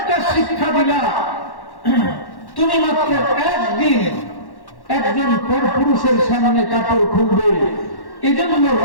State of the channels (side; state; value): right; late; 1.1 ms